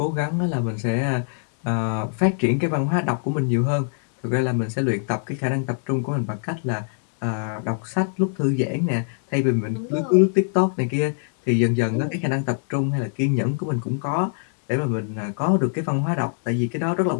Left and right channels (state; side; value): silent; right; digital silence